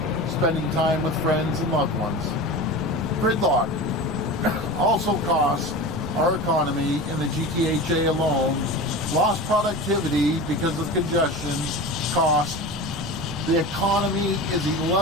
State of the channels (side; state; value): right; noise; rumble, 13 dB below the sound